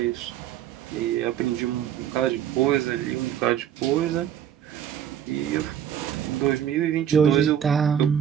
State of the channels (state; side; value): quieter; left; 9.7 dB